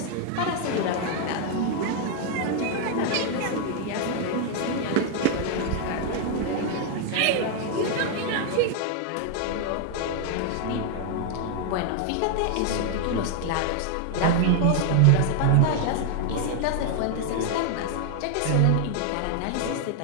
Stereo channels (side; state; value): both; different; correlation 0.00